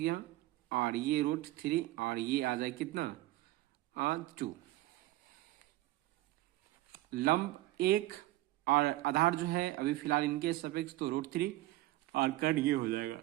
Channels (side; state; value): left; quieter; 17.1 dB